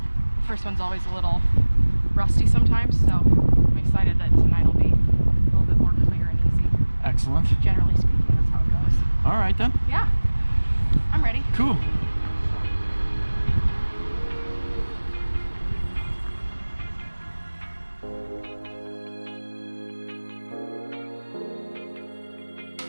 the first one's always a little rusty sometimes, so I'm excited that tonight will be a little bit more clear and easy. Excellent. Generally speaking, that's how it goes. All right then. Yeah, I'm ready. Cool.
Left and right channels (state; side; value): inverted; both; correlation -1.00